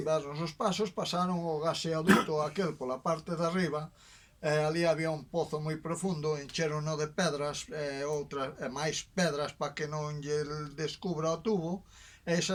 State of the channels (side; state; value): both; identical; correlation 1.00